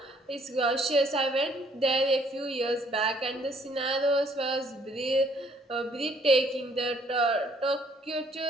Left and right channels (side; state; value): both; normal; correlation 0.64